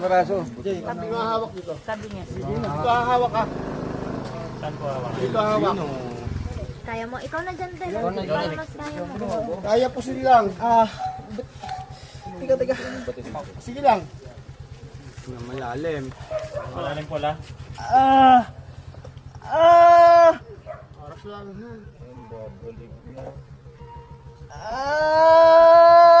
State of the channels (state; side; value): identical; both; correlation 1.00